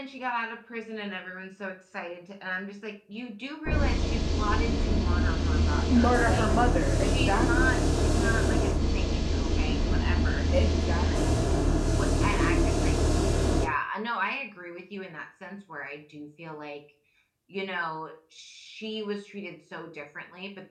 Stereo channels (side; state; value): both; identical; correlation 1.00